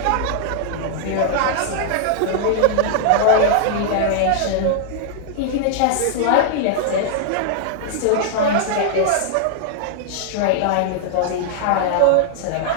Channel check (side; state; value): both; different; correlation -0.01